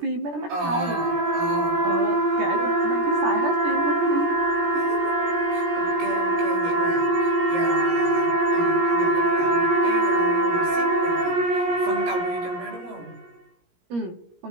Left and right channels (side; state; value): left; late; 17 ms